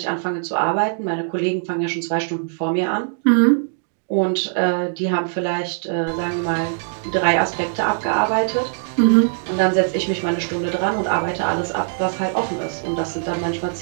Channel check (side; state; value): left; silent; digital silence